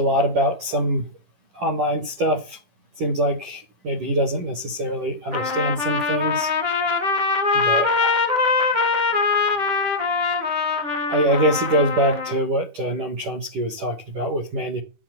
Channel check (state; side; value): late; left; 10 ms